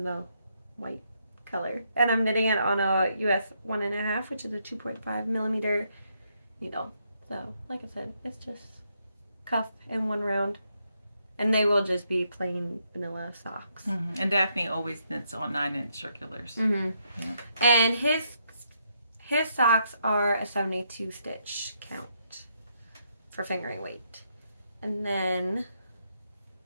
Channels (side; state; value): both; inverted; correlation -0.76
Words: the white color. And I'm knitting it on a US 1.5, which is a 2.5 millimeter needle. So, like I said, it's just cuff and one round. And they will just be plain vanilla socks. Mm-hmm. And Daphne always knits on 9-inch circulars. Mm-hmm. Yeah. And his socks are a 72 stitch count for fingering weight. And then